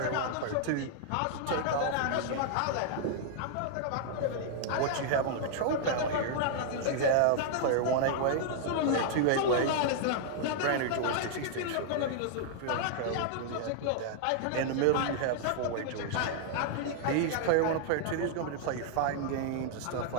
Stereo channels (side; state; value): both; different; correlation -0.01